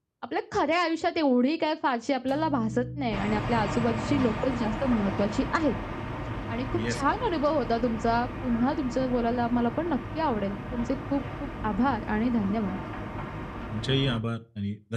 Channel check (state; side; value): identical; both; correlation 1.00